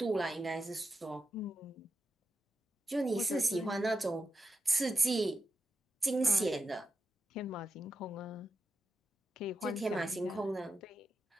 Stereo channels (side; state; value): both; normal; correlation 0.87